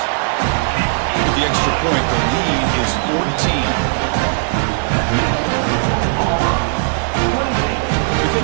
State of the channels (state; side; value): silent; left; digital silence